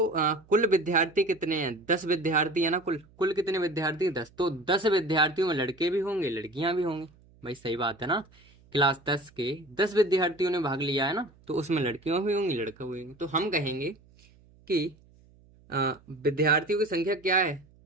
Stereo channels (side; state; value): right; noise; hum, 28 dB below the sound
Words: कुल विद्यार्थी कितने हैं? 10 विद्यार्थी है ना। कुल कुल कितने विद्यार्थी? 10। तो 10 विद्यार्थियों में लड़के भी होंगे लड़कियां भी होंगी। भाई सही बात है ना। क्लास 10 के 10 विद्यार्थियों ने भाग लिया है ना, तो उसमें लड़कियां भी होंगी लड़के भी होंगे। तो हम कहेंगे कि विद्यार्थियों की संख्या क्या है?